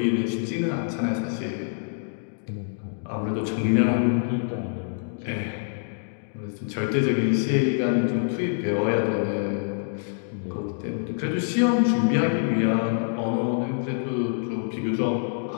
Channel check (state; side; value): silent; right; digital silence